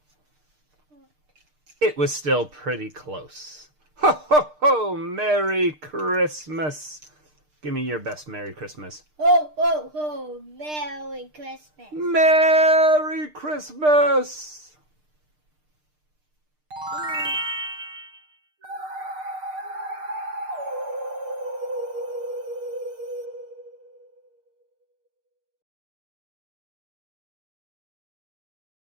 It was still pretty close. Ho, ho, ho! Merry Christmas! Give me your best Merry Christmas. Ho, ho, ho! Merry Christmas! Merry Christmas!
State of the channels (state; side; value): late; left; 6.6 ms